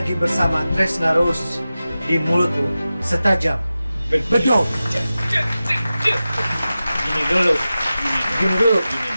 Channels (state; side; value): inverted; both; correlation -0.94